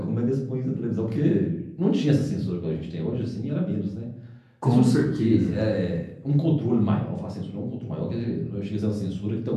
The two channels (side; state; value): both; identical; correlation 1.00